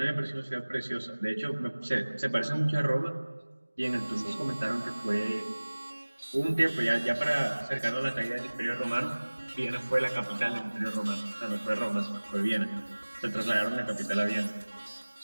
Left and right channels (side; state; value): both; inverted; correlation -1.00